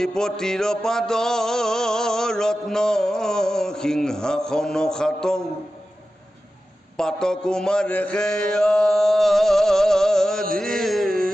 পাদ ৰত্ন সিংহাসন খাত পাত কুমাৰে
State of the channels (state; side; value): normal; both; correlation 0.93